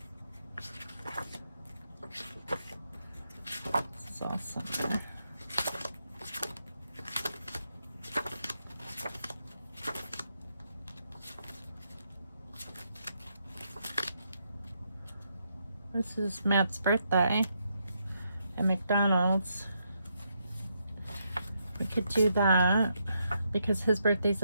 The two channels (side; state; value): both; inverted; correlation -0.79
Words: This is all summer. This is Matt's birthday at McDonald's. We could do that because his birthday's